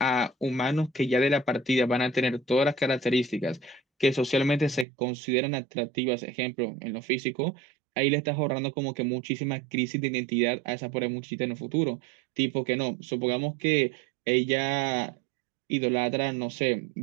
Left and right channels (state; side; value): drops out; left; at 4.9 s